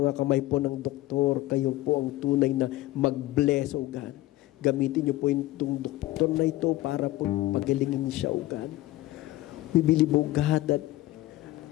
mga kamay po ng doktor, kayo po ang tunay na mag-bless, O God. Gamitin niyo po itong doktor na ito para po pagalingin siya, O God. We believe, O God, that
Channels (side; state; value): right; quieter; 16.8 dB